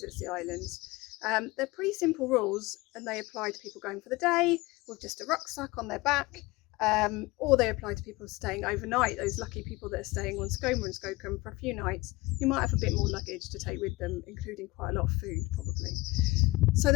the islands. They're pretty simple rules, and they apply to people going for the day with just a rucksack on their back, or they apply to people staying overnight, those lucky people that are staying on Skoma and Skokkum for a few nights, who might have a bit more luggage to take with them, including quite a lot of food probably. So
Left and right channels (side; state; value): right; quieter; 21.4 dB